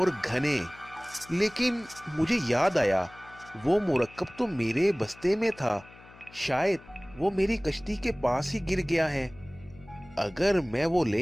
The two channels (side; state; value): left; noise; hum, 22 dB below the sound